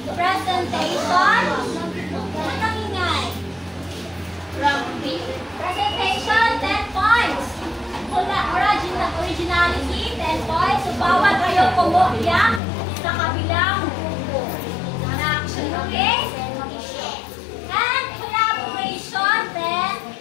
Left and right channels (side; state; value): right; drops out; at 12.6 s